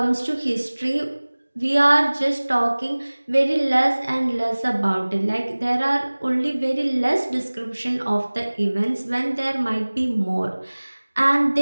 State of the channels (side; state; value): both; inverted; correlation -1.00